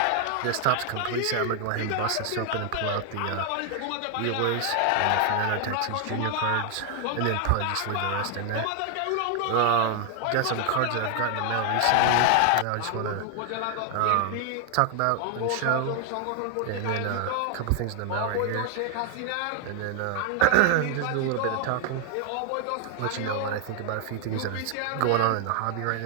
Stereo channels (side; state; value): both; different; correlation 0.00